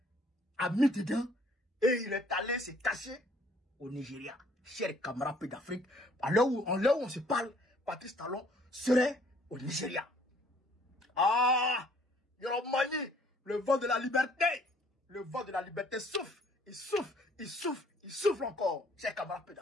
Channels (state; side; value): normal; both; correlation 0.60